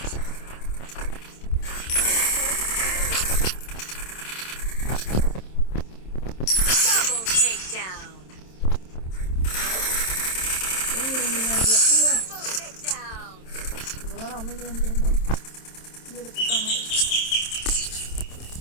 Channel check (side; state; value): right; late; 27 ms